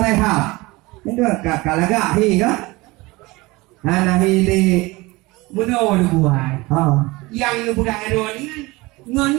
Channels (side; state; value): left; quieter; 22.4 dB